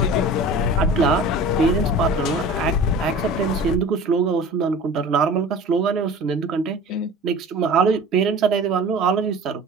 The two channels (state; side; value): normal; both; correlation 0.39